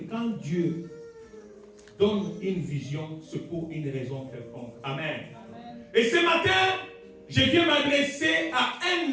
Dieu donne une vision, c'est pour une raison quelconque. Amen. Et ce matin, je viens m'adresser à un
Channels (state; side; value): identical; both; correlation 1.00